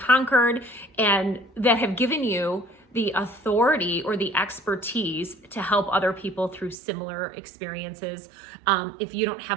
and that have given you the authority or the expertise to help other people through similar experiences, if you don't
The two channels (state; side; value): drops out; left; at 6.8 s